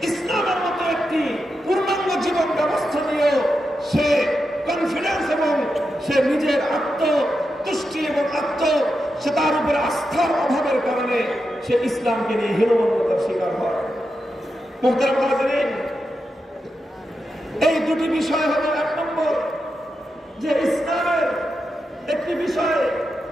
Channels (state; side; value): normal; both; correlation 0.87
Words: ইসলামের মতো একটি পূর্ণাঙ্গ জীবন ব্যবস্থা নিয়ে সে কনফিডেন্স এবং সে নিজের আত্মতুষ্টি এবং সে তার উপরে আস্থার অভাবের কারণে সে ইসলামকে নিয়ে হীনমন্যতার শিকার হয়। মুহতারাম হাজিরিন, এই দুটি বিষয় হলো, এক নম্বর যে ইসলামের একটি বিষয়